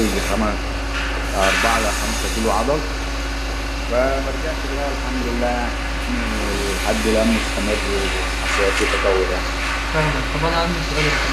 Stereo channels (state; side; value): identical; both; correlation 1.00